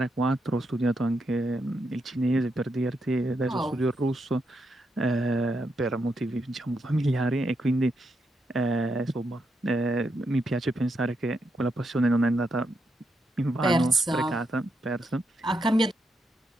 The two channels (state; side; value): normal; both; correlation 0.82